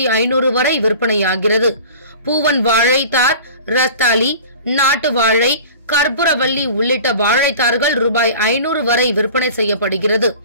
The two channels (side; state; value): both; inverted; correlation -0.41